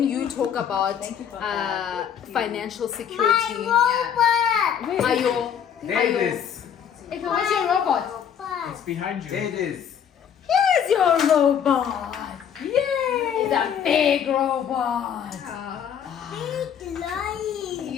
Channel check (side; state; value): right; quieter; 8.5 dB